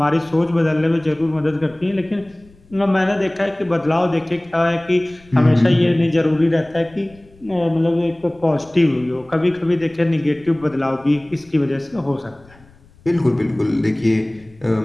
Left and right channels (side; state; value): left; noise; rumble, 27 dB below the sound